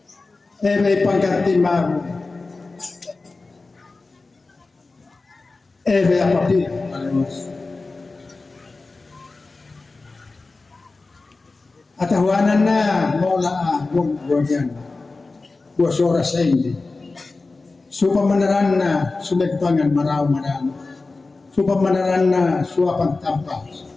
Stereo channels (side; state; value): right; quieter; 3.6 dB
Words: May pangkati mago. May apapil. Alos. Atahuanan na mola buwan buwas oras sa hindi. Supamanaran na sumegpangan maraw marano. Supamanaran na suwapang tampa.